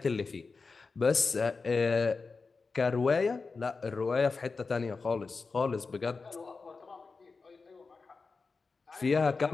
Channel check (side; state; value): right; quieter; 4.4 dB